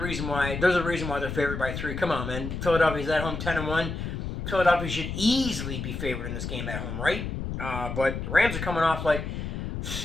why they're favored by 3. Come on, man. Philadelphia's at home 10-1. Philadelphia should easily be favored in this game at home, right? But the Rams are coming off like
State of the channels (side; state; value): left; noise; rumble, 5 dB below the sound